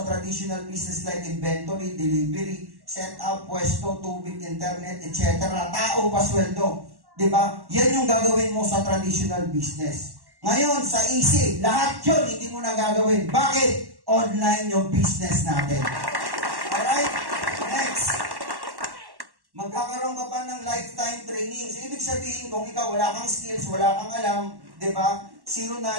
traditional business like inventory, delivery, setup, pwesto, tubig, internet, etc. Tao, pasweldo. Diba? Yan yung gagawin mo sa traditional business. Ngayon, sa easy, lahat yun hindi mo na gagawin. Bakit? Online yung business natin. Alright? Next. Magkakaroon ka pa ng lifetime training. So, ibig sabihin, kung ikaw wala kang skills, wala kang alam, di ba? Zero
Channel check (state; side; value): late; left; 1.1 ms